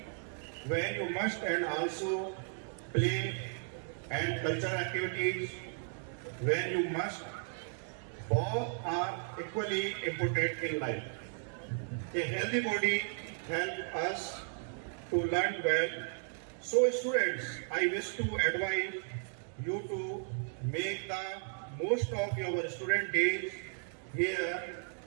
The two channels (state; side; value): silent; left; 54 dB below the other